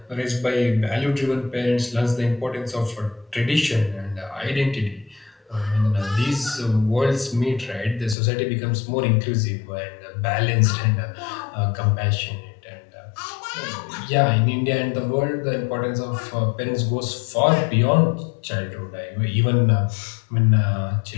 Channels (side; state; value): right; drops out; at 8.2 s